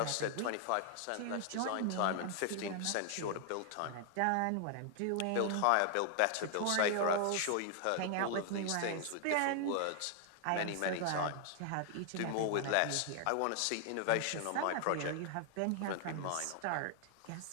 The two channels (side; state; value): both; different; correlation 0.00